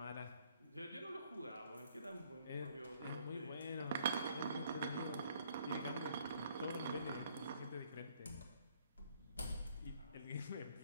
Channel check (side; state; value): both; inverted; correlation -0.64